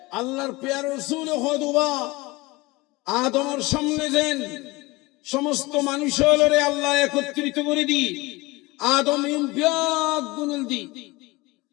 আল্লাহর পেয়ারা রাসূল খুতবা আদমের সামনে দেন, সমস্ত মানুষ হলরে আল্লাহ একত্রিত করে দি, আদম ব্যাগ গুনল দি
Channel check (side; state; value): right; quieter; 22.4 dB